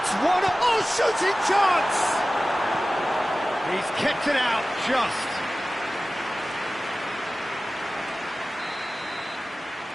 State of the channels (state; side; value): normal; both; correlation 0.96